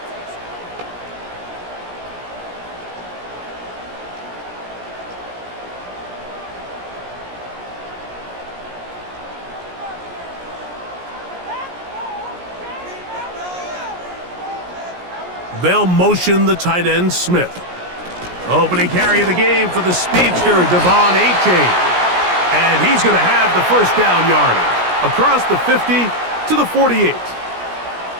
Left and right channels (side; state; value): left; late; 17 ms